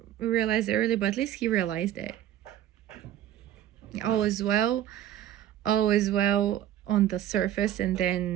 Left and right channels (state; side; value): quieter; left; 11.9 dB